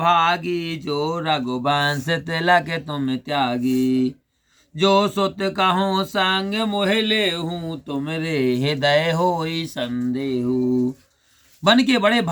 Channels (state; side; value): identical; both; correlation 1.00